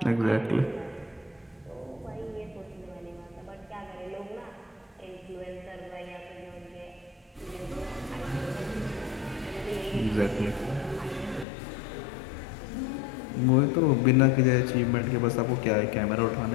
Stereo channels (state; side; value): drops out; right; at 11.5 s